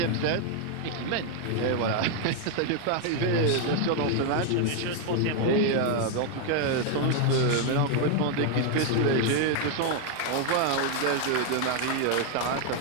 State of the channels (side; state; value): both; different; correlation 0.01